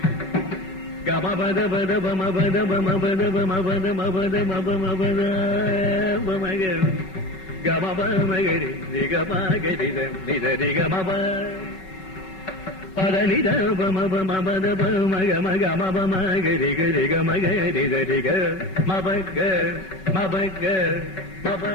கமபதபதபமபதபமபதமபதமபதமபதமபத கமபமகரி ரிகமகரி நிதரிகமப பதனித பமபமபதபமகமகமபமகரி கரிகமகரி தரிக மபக மபக மப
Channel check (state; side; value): late; right; 5.3 ms